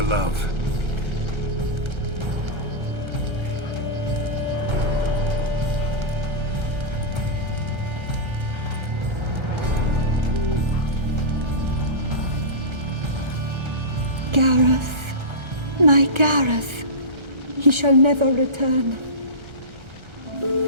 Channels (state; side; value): late; left; 1.3 ms